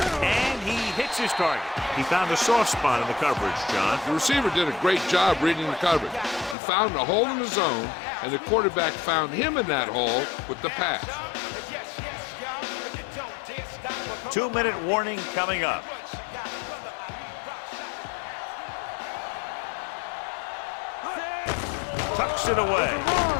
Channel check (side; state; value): right; drops out; at 6.6 s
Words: and he hits his target. He found a soft spot in the coverage, John. The receiver did a great job reading the coverage. He found a hole in the zone, and the quarterback found him in that hole with the pass. 2-minute warning coming up. Tucks it away.